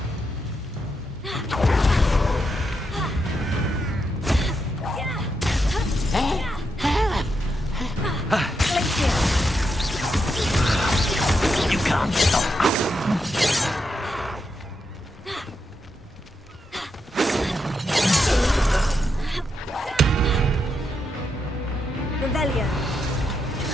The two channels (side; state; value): both; normal; correlation 0.83